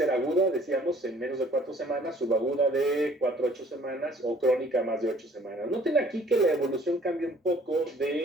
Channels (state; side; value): normal; both; correlation 0.56